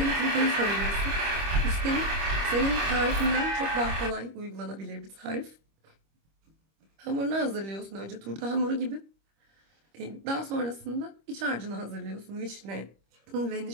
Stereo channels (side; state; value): left; late; 25 ms